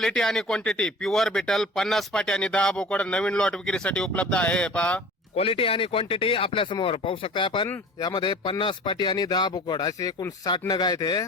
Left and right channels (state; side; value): normal; both; correlation 0.42